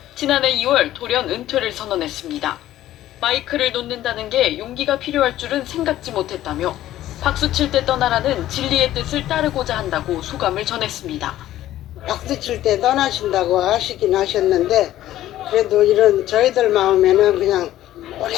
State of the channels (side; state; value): right; quieter; 13.7 dB